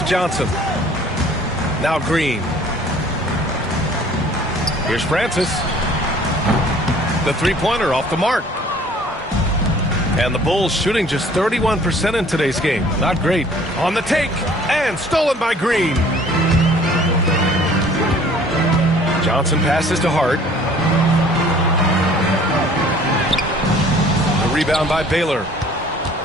Johnson. Now Green. Here's Francis. The three-pointer off the mark. And the Bulls shooting just 31% in today's game. Not great. On the take. And stolen by Green. Johnson passes to Hart. The rebound by Baylor.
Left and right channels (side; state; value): both; normal; correlation 0.53